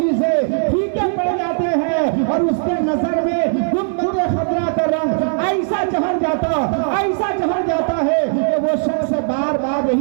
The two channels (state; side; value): silent; left; digital silence